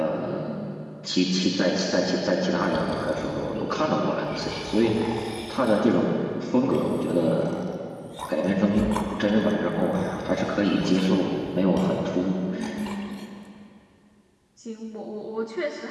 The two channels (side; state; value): both; identical; correlation 1.00